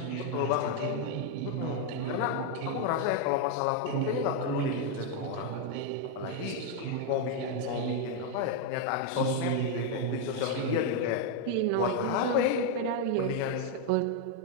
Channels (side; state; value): both; different; correlation 0.01